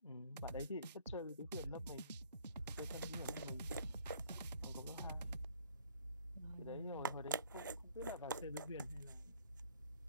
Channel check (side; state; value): both; inverted; correlation -0.59